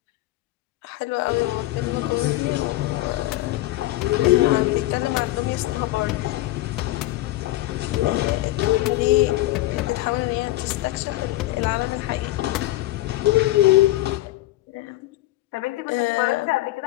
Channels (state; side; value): quieter; right; 17.0 dB